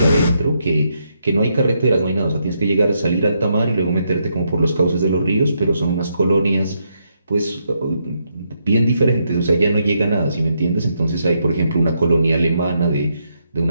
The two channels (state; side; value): inverted; both; correlation -0.79